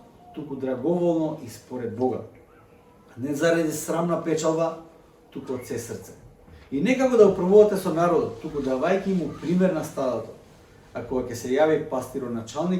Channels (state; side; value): identical; both; correlation 1.00